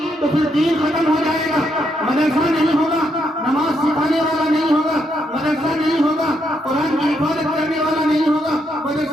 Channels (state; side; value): normal; both; correlation 0.77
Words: तो फिर दीन खत्म हो जाएगा। मदरसा नहीं होगा, नमाज सिखाने वाला नहीं होगा, मदरसा नहीं होगा, कुरान की हिफाजत करने वाला नहीं होगा,